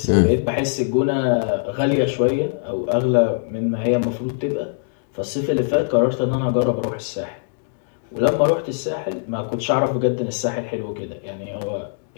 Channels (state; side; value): silent; right; digital silence